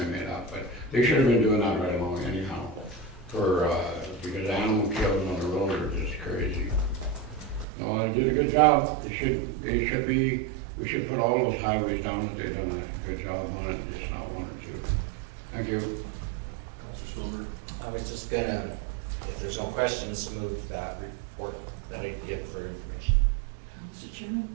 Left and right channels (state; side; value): drops out; left; at 7.7 s